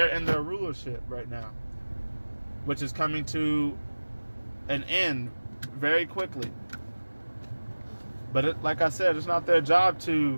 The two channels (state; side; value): inverted; both; correlation -1.00